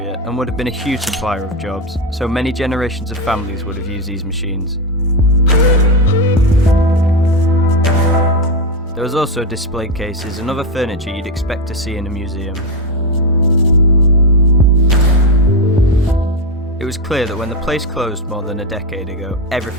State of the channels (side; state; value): both; normal; correlation 0.10